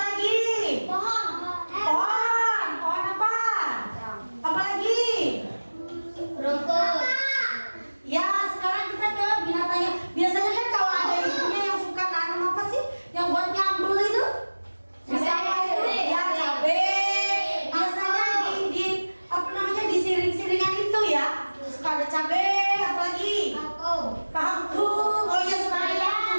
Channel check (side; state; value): both; inverted; correlation -1.00